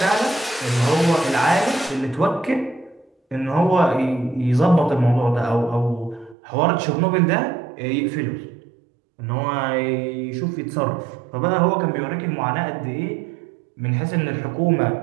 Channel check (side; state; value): left; drops out; at 6.4 s